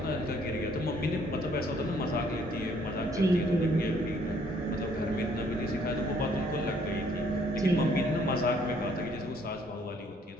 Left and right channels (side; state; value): both; normal; correlation 0.64